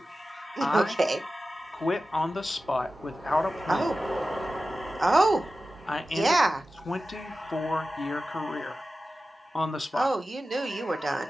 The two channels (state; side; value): normal; both; correlation 0.94